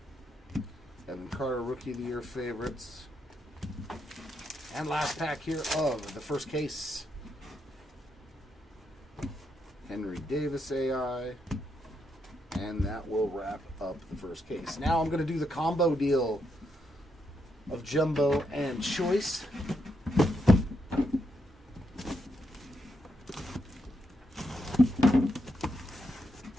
Evan Carter, Rookie of the Year favorites. And last pack here of the first case. Henry Davis AI. And that will wrap up the first case. Now I'm going to do the combo deal of Jumbo and Choice.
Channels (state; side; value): normal; both; correlation 0.81